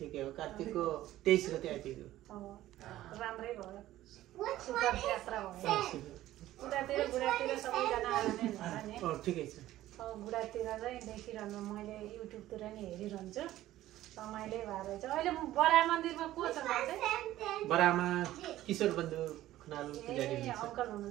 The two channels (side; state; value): left; quieter; 14.6 dB